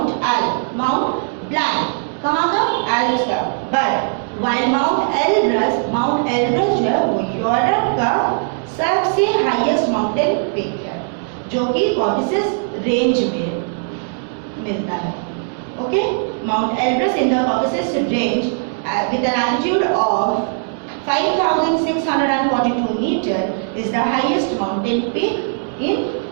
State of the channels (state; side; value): silent; left; digital silence